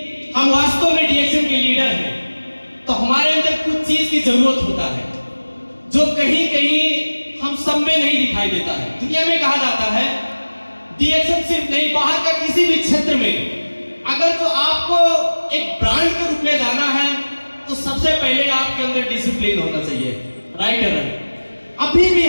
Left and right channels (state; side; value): inverted; both; correlation -1.00